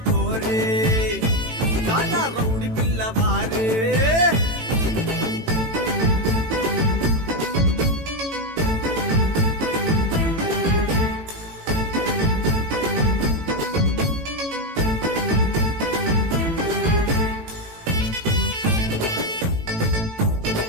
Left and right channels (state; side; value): late; left; 18 ms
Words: పోరే చానా రౌడి పిల్లవారే.